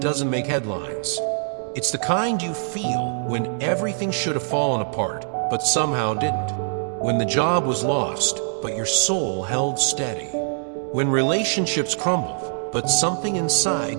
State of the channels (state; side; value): silent; left; digital silence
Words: make headlines. It's the kind you feel when everything should have fallen apart, but somehow didn't. When the job was lost, but your soul held steady. When relationships crumbled, but something